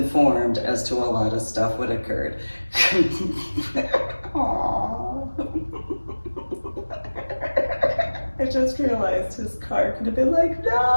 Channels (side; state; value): both; inverted; correlation -1.00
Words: as to a lot of what had occurred. Aww. I just realized his car could have been like,